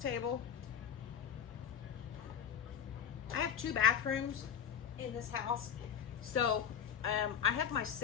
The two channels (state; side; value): quieter; right; 8.1 dB